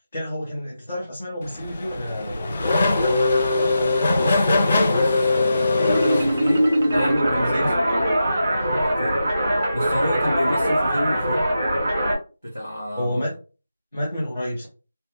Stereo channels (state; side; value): inverted; both; correlation -0.88